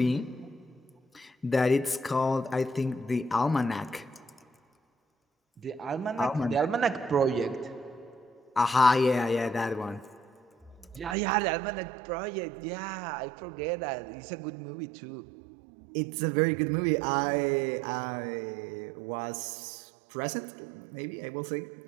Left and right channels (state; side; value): drops out; left; at 11.2 s